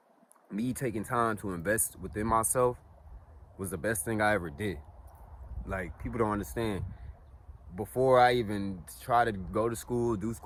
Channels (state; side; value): identical; both; correlation 1.00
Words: me taking time to invest within myself was the best thing I ever did. Like, people don't understand. Before I even try to go to school, do